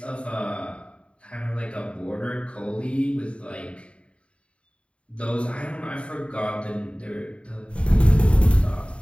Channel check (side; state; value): right; late; 0.059 ms